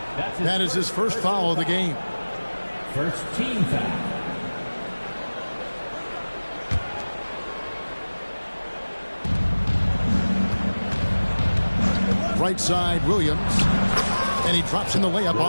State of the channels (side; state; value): both; inverted; correlation -1.00